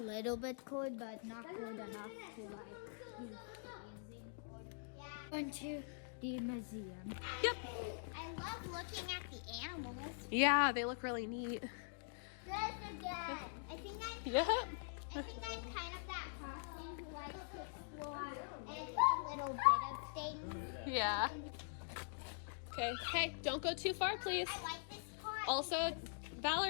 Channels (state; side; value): silent; right; digital silence